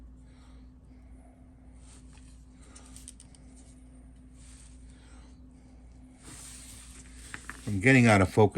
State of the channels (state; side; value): identical; both; correlation 1.00